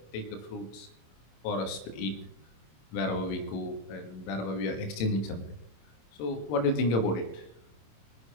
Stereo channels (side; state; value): right; late; 26 ms